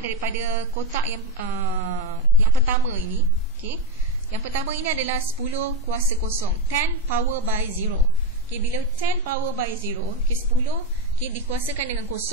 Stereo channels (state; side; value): normal; both; correlation 0.11